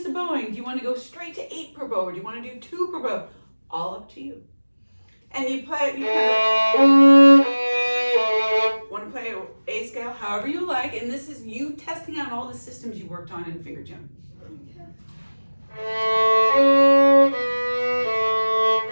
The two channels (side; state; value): both; inverted; correlation -1.00